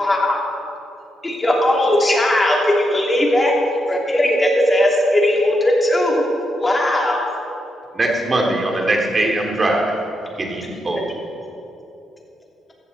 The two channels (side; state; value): both; normal; correlation 0.83